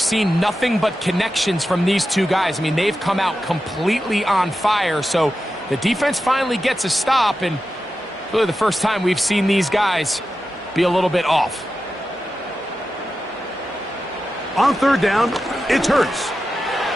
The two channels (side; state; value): both; normal; correlation 0.91